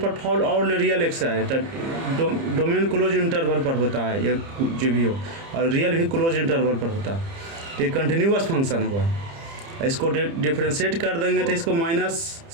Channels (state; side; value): late; left; 30 ms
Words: पर फॉल ऑल रियल एक्स है, तो डोमेन क्लोज इंटरवल पर होता है, ये जो भी हो, और रियल भी क्लोज इंटरवल पर होता है। तो ये कंटिन्यूअस फंक्शन हुआ। इसको डिफ्रेंशिएट कर देंगे तो इसको माइनस